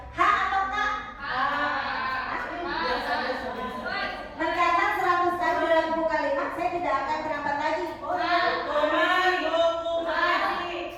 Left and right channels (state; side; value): identical; both; correlation 1.00